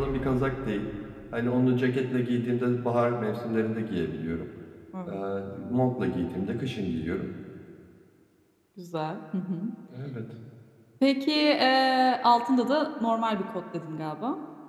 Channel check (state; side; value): identical; both; correlation 1.00